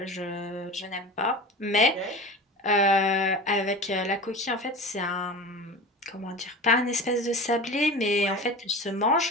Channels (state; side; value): normal; both; correlation 0.32